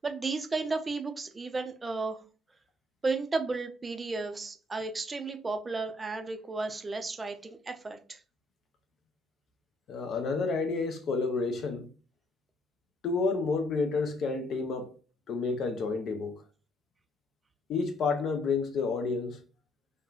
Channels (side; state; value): both; normal; correlation 0.68